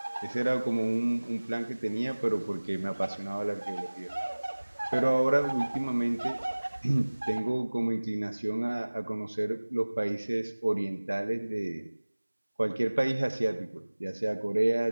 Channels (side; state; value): both; inverted; correlation -1.00